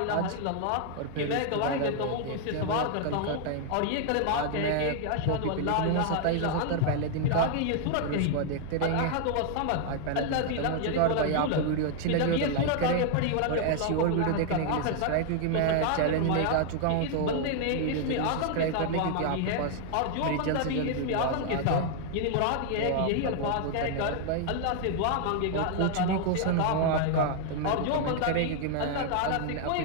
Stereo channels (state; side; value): different; both; correlation 0.00